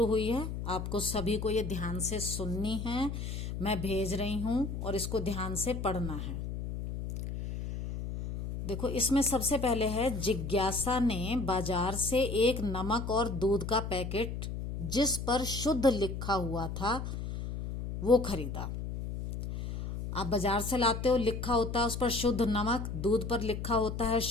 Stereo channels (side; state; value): left; noise; hum, 5 dB below the sound